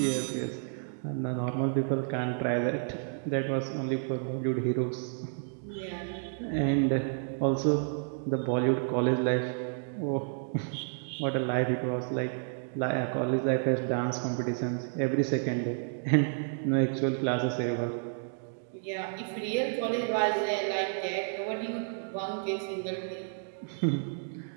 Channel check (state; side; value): silent; left; digital silence